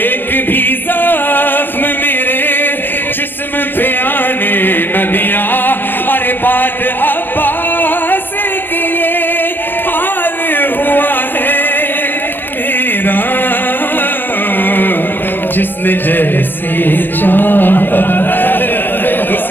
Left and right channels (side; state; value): right; late; 0.095 ms